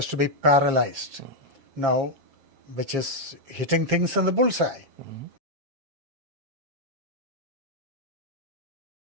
to be paralyzed. Now, which is hitting things in the bullseye.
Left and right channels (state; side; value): late; left; 7.4 ms